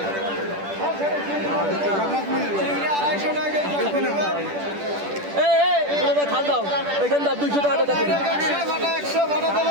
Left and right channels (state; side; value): late; left; 10 ms